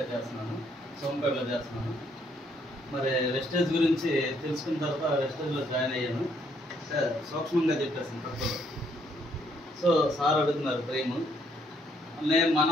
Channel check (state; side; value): normal; both; correlation 0.70